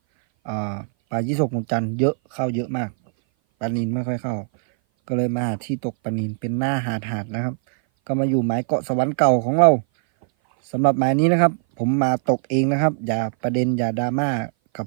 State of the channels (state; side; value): silent; left; 58 dB below the other